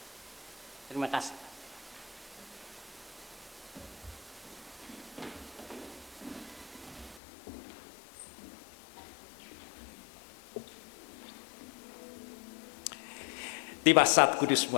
Terima kasih. Tiba saat kudus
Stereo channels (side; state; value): right; drops out; at 7.2 s